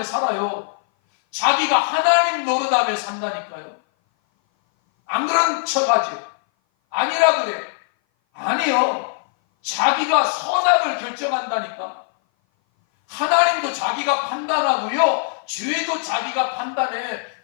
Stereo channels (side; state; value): right; silent; 58 dB below the other